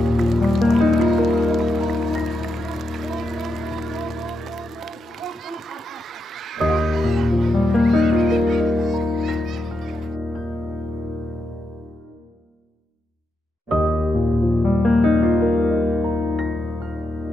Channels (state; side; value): normal; both; correlation 0.84